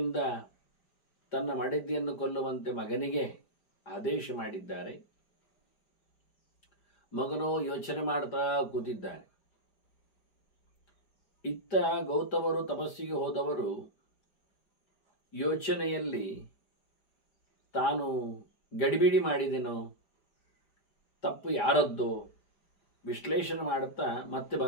ತನ್ನ ಮಡದಿಯನ್ನು ಕೊಲ್ಲುವಂತೆ ಮಗನಿಗೆ ಆದೇಶ ಮಾಡಿದ್ದಾರೆ. ಮಗನೋ ಯೋಚನೆ ಮಾಡ್ತಾ ಕೂತಿದ್ದಾನೆ. ಇತ್ತ ಗೌತಮರು ತಪಸ್ಸಿಗೆ ಹೋದವರು ಯೋಚನೆಯಲ್ಲಿ ತಾನು ಗಡಿಬಿಡಿ ಮಾಡಿದೆನೋ, ತಪ್ಪು ಯಾರದ್ದೋ ವಿಶ್ಲೇಷಣೆ ಮಾಡುತ್ತಾ ಮತ್ತೆ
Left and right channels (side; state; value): right; late; 4.9 ms